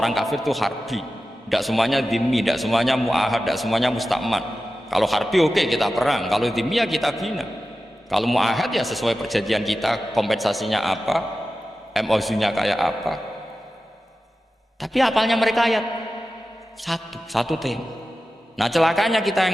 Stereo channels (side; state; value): both; normal; correlation 0.94